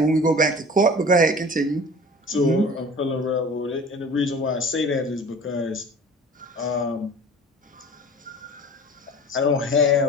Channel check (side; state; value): both; normal; correlation 0.42